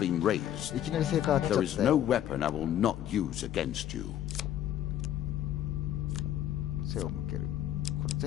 raised. いきなり成果が当たっ There ち is ゃった no よ。 weapon I will not use against you. 背を向ける。これ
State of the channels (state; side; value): quieter; right; 11.3 dB